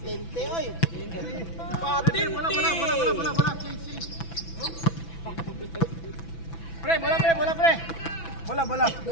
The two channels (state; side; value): late; right; 6.0 ms